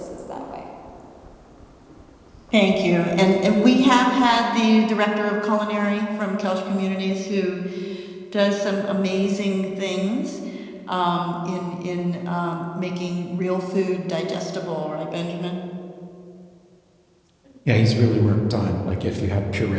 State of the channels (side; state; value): both; identical; correlation 1.00